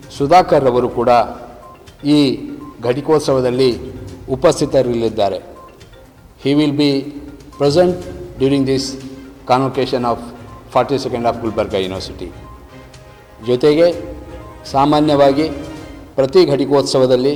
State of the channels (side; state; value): both; identical; correlation 1.00